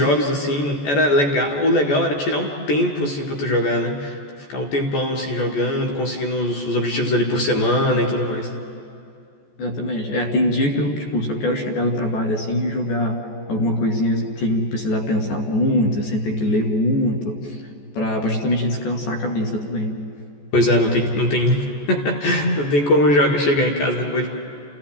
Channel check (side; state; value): right; late; 14 ms